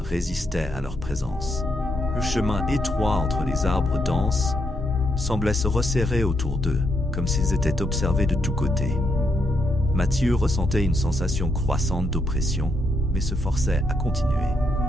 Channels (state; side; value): normal; both; correlation 0.78